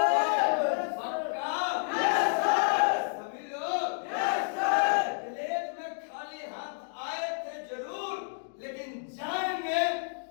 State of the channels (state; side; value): silent; right; digital silence